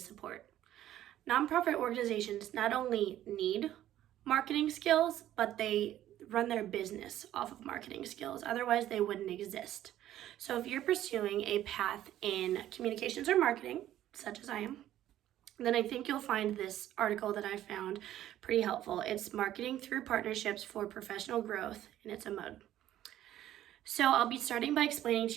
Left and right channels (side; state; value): left; quieter; 12.7 dB